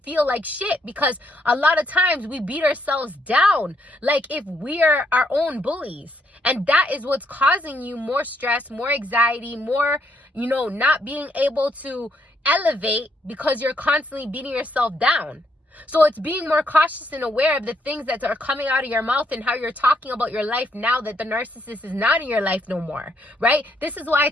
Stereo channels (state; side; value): normal; both; correlation 0.73